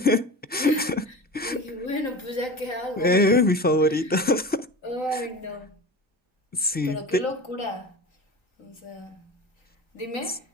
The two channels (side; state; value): both; normal; correlation 0.32